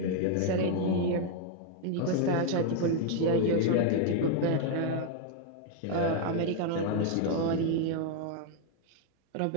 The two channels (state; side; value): different; both; correlation 0.00